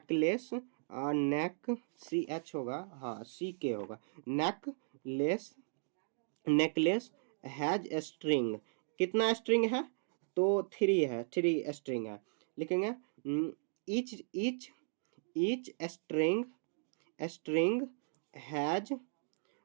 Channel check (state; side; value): silent; left; digital silence